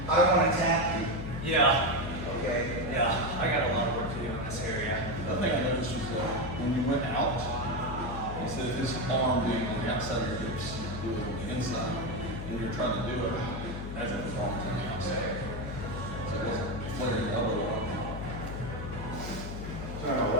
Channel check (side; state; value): left; noise; hum, 6 dB below the sound